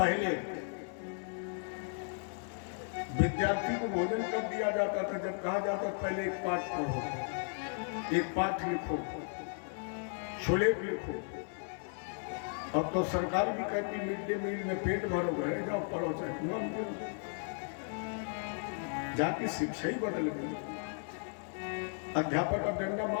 विद्यार्थी को भोजन कब दिया जाता था, जब कहा जाता पहले एक पाठ पढ़ो, एक पाठ लिखो, सुलेख लिखो। अब तो सरकार भी कहती मिड डे मील में पेट भरो, घर जाओ पढ़ो चाहे जाति शिक्षा ही बदल गई। अध्यापक अब डंडा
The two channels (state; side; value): silent; right; 54 dB below the other